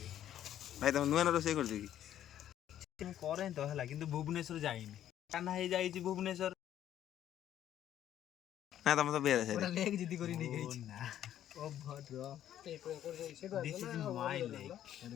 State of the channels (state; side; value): quieter; right; 11.3 dB